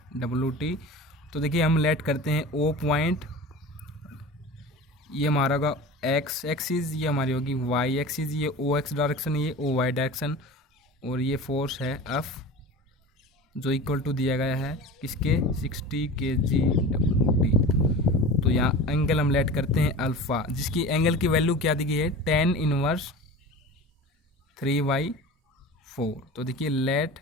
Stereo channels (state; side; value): normal; both; correlation 0.34